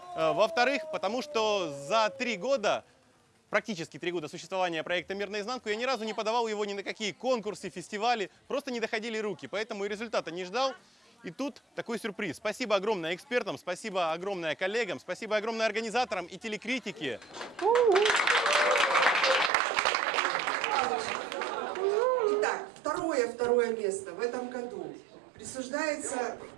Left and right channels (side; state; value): left; drops out; at 19.5 s